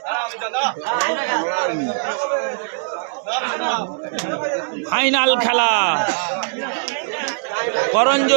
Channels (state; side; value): silent; left; 65 dB below the other